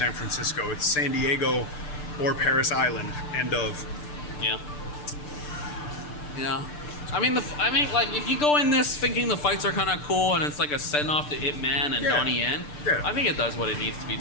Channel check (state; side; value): late; right; 6.8 ms